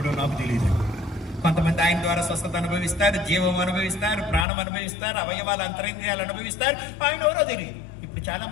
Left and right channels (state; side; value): drops out; right; at 4.5 s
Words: నాకు తెలియదు. కొంతమంది ఆయన ద్వారా స్వస్థత అనుభవిస్తారు, జీవం అనుభవిస్తారు, ప్రాణం అనుభవిస్తారు, అవయవాల అంతరింద్రియాలు అనుభవిస్తారు. ఆయన ఎవరో తెలియదు. ఇప్పుడు చాలా